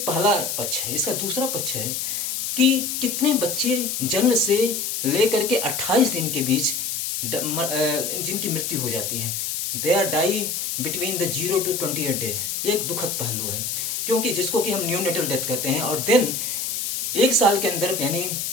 पहला पक्ष है। इसका दूसरा पक्ष है कि कितने बच्चे जन्म से लेकर के 28 दिन के बीच जिनकी मृत्यु हो जाती है। They are die between the 0 to 28 days। ये एक दुखद पहलू है, क्योंकि जिसको कि हम न्यूनेटल डेथ कहते हैं, और देन एक साल के अंदर, यानी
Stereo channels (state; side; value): noise; left; hiss, 2 dB below the sound